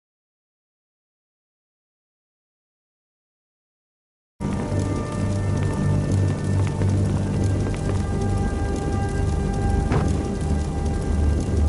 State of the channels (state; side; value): identical; both; correlation 1.00